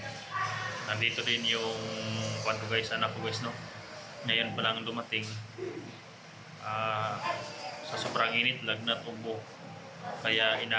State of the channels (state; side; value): identical; both; correlation 1.00